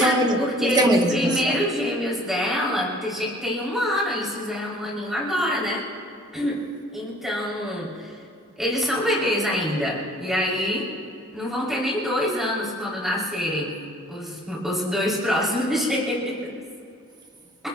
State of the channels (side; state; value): both; normal; correlation 0.53